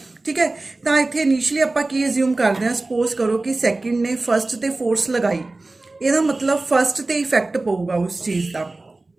ठीक है। तो इतने इनिशली आप एज्यूम करते हैं सपोज करो कि सैकेंड ने फस्ट ते फोर्स लगाई, यदा मतलब फस्ट ते इफेक्ट पऊगा उस चीज़ का।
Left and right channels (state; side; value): quieter; left; 3.2 dB